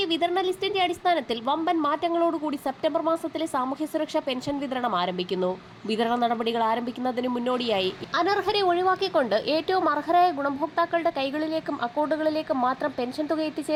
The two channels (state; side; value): identical; both; correlation 1.00